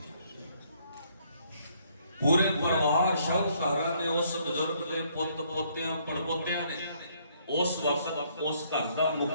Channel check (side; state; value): both; inverted; correlation -0.67